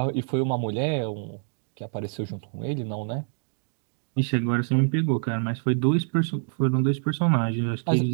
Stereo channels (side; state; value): left; silent; digital silence